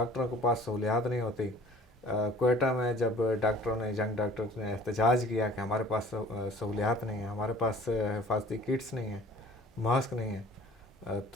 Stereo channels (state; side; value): normal; both; correlation 0.49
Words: کے پاس سہولیات نہیں ہوتی. کوئٹہ میں جب ڈاکٹروں نے ینگ ڈاکٹرز نے احتجاج کیا کہ ہمارے پاس سہولیات نہیں ہیں، ہمارے پاس حفاظتی کٹس نہیں ہیں، ماسک نہیں ہیں،